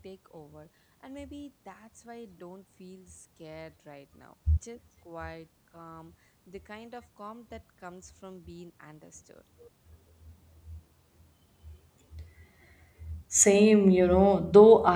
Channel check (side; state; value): both; identical; correlation 1.00